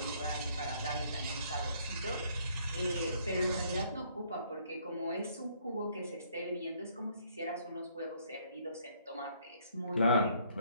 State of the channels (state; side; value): inverted; both; correlation -0.65